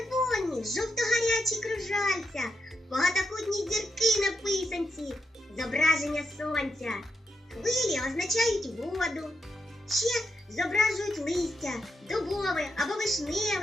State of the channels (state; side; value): normal; both; correlation 0.83